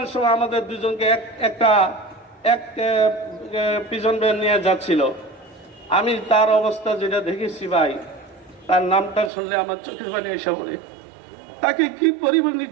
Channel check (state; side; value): drops out; left; at 9.3 s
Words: সময় আমাদের দুজনকে এক প্রিজন ভ্যান নিয়ে যাচ্ছিল। আমি তার অবস্থা যেটা দেখেছি ভাই, তার নামটা শুনলে আমার চোখের পানি এসে পড়ে। তাকে কি পরিমাণ